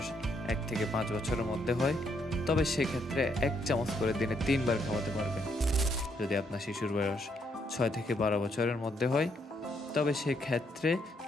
1 থেকে 5 বছরের মধ্যে হয়, তবে সেক্ষেত্রে 1 চামচ করে দিনে 3 বার খাওয়াতে পারবেন। যদি আপনার শিশুর বয়স 6 থেকে 12 বছরের মধ্যে হয়, তবে সেক্ষেত্রে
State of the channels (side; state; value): both; normal; correlation 0.74